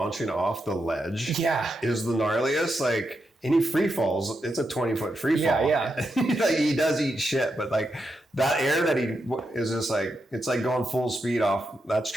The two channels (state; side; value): normal; both; correlation 0.85